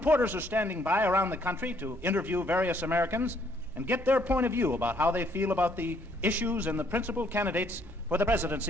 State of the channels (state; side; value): normal; both; correlation 0.67